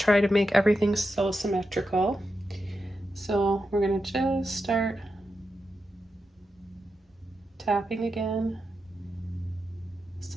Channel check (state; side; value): normal; both; correlation 0.88